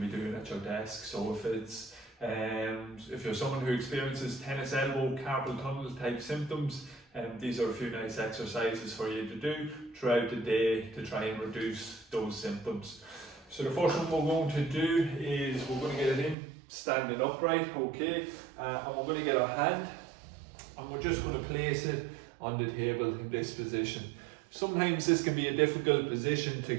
be doing at your desk. So if you're someone who experiences tennis elbow, carpal tunnel type symptoms, these are a few nice exercises for you to do throughout the day to try and reduce those symptoms. So the first one we're going to do is we're going to get it in standing upright, okay, and we're going to get our hand and we're just going to place it on the table in this position. Sometimes this can be a difficult position to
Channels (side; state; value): left; drops out; at 16.4 s